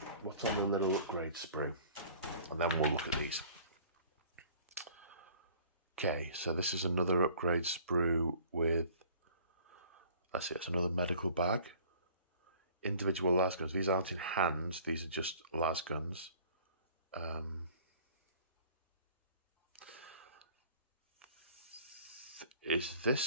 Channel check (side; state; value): both; inverted; correlation -0.50